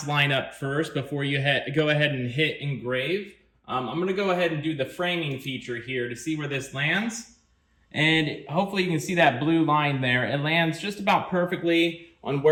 line up first before you go ahead and hit engrave. I'm going to go ahead and do the framing feature here to see where this lands. And hopefully you can see that blue line there. It lands just about perfectly on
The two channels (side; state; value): both; identical; correlation 1.00